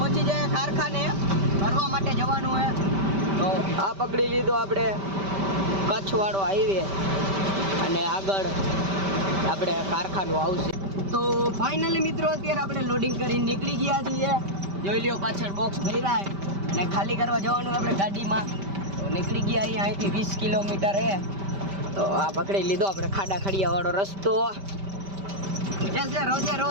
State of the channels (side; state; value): left; late; 5.1 ms